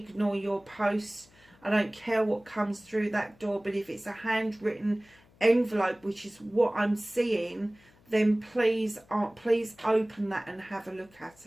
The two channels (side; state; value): left; noise; hum, 29 dB below the sound